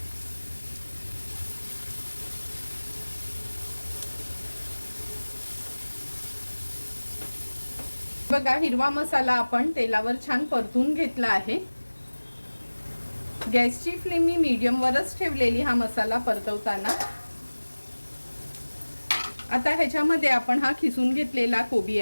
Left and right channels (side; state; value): both; inverted; correlation -1.00